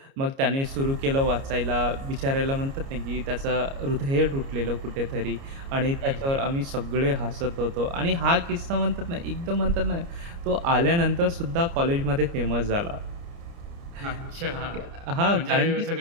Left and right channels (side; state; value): left; late; 29 ms